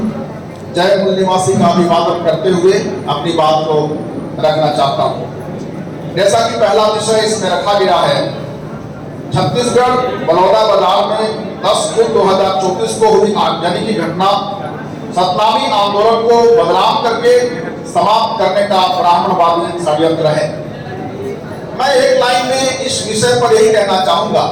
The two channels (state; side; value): identical; both; correlation 1.00